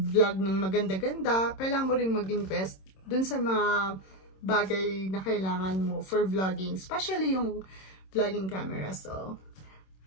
ng maganda-ganda, kailangan mo rin mag-invest dun sa mga bagay na kailangan mo for vlogging, especially yung vlogging camera. So,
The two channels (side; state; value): right; late; 26 ms